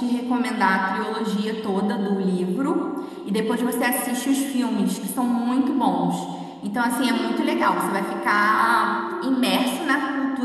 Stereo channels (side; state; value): both; identical; correlation 1.00